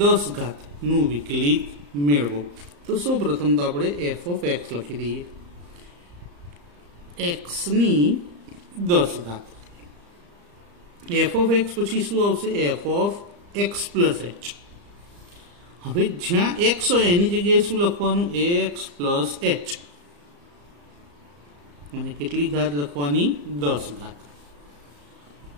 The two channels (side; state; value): left; late; 34 ms